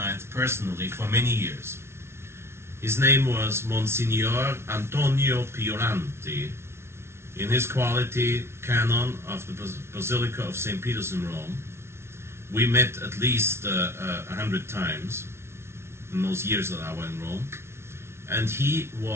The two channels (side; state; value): left; late; 0.12 ms